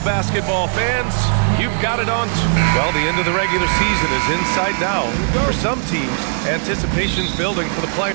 basketball fans. You've got it on. Well, the end of the regular season is in sight now. For some teams, anticipation's building for the play.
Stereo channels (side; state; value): left; silent; digital silence